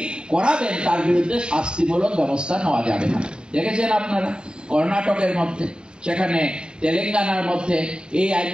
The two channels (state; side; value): late; left; 0.050 ms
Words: করাবেন তার বিরুদ্ধে শাস্তিমূলক ব্যবস্থা নেওয়া যাবে না। দেখেছেন আপনারা কর্ণাটকের মধ্যে, সেখানে তেলেঙ্গানার মধ্যে এই